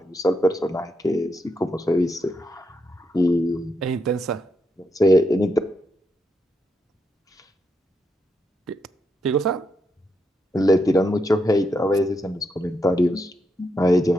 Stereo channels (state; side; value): normal; both; correlation 0.82